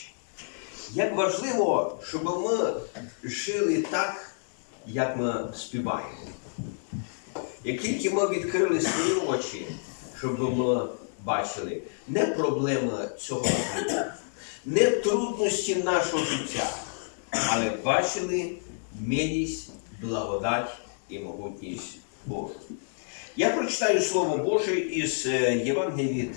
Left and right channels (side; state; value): right; silent; digital silence